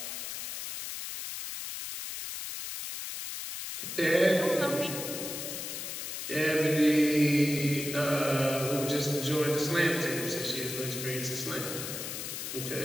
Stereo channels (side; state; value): left; noise; hiss, 6 dB below the sound